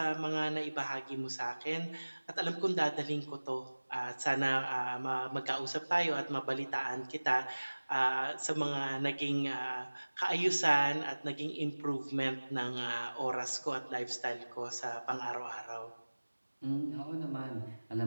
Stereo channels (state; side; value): inverted; both; correlation -1.00